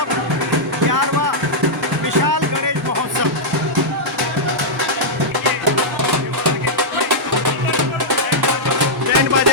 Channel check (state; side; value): normal; both; correlation -0.08